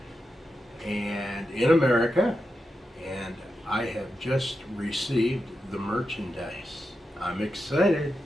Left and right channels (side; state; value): both; normal; correlation 0.88